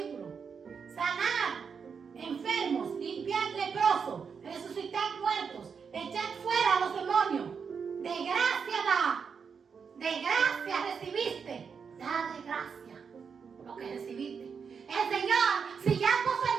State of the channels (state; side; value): quieter; left; 6.2 dB